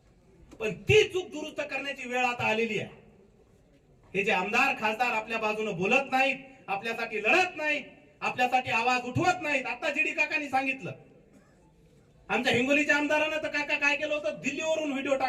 पण ती चूक दुरुस्त करण्याची वेळ आता आलेली आहे. हे जे आमदार खासदार आपल्या बाजूने बोलत नाहीत, आपल्यासाठी लढत नाहीत, आपल्यासाठी आवाज उठवत नाहीत. आता जीडी काकांनी सांगितलं, आमच्या हिंगोलीच्या आमदारानं तर काका काय केलं होतं, दिल्लीवरून व्हिडिओ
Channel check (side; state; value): both; identical; correlation 1.00